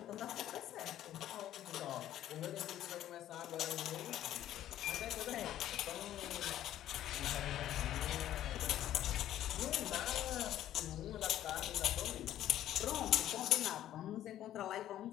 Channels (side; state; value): right; quieter; 12.3 dB